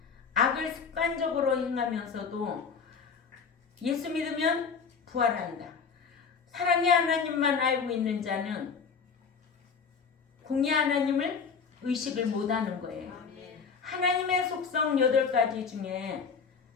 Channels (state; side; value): quieter; right; 5.8 dB